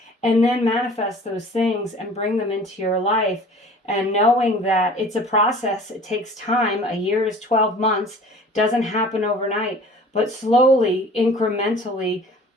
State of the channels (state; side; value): normal; both; correlation 0.46